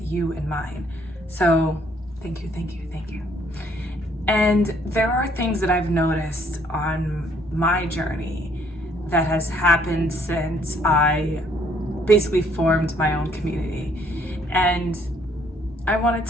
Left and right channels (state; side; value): normal; both; correlation 0.65